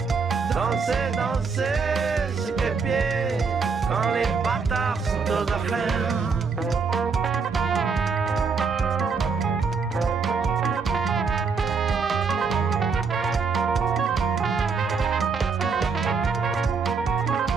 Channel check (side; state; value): left; quieter; 5.2 dB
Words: Danser, danser, sur quel pied? Quand les bâtards sont aux affaires.